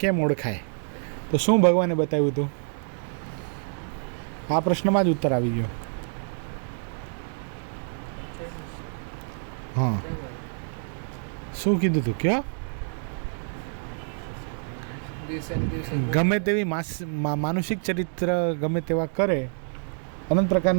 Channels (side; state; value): left; silent; 60 dB below the other